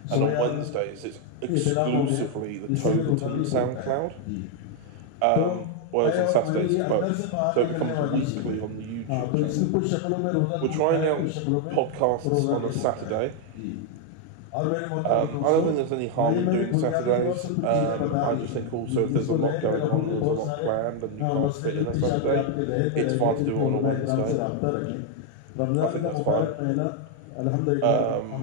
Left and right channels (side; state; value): both; different; correlation 0.01